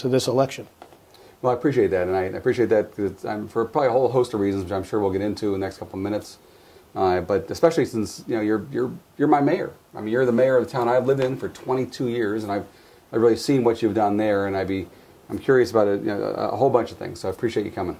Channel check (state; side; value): identical; both; correlation 1.00